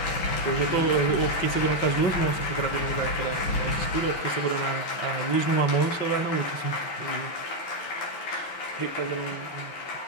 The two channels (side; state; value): right; late; 6.0 ms